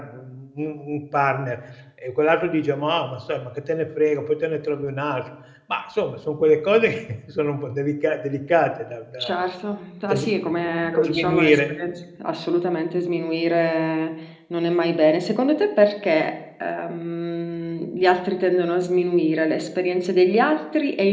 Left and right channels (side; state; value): both; identical; correlation 1.00